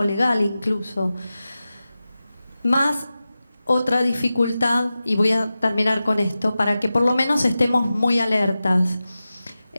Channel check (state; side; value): inverted; both; correlation -0.94